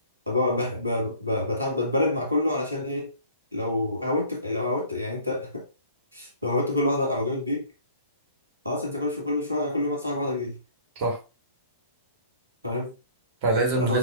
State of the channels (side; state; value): both; inverted; correlation -0.52